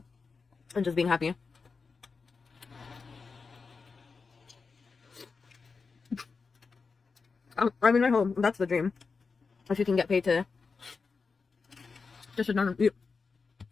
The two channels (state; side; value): quieter; right; 4.8 dB